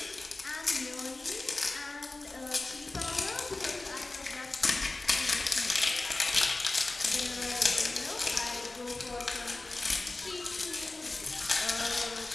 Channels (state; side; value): quieter; right; 3.1 dB